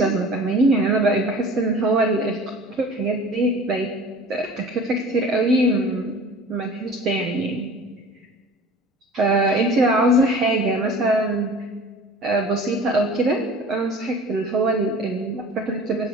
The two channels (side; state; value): both; normal; correlation 0.42